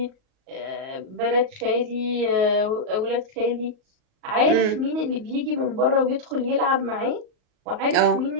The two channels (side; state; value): left; late; 38 ms